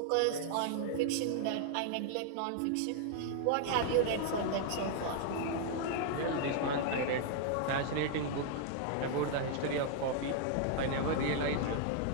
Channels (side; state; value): both; different; correlation -0.01